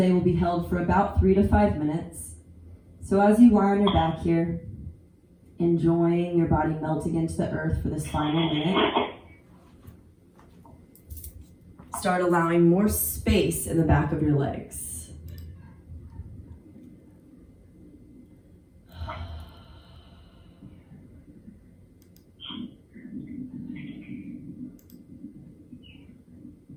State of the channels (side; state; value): both; identical; correlation 1.00